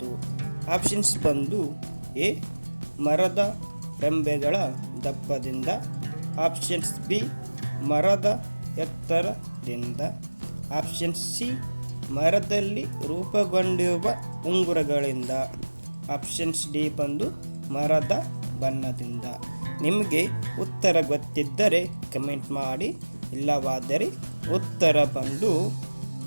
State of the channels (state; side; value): inverted; both; correlation -1.00